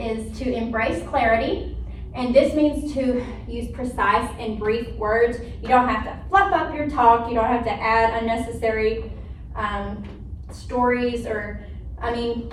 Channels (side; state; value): both; identical; correlation 1.00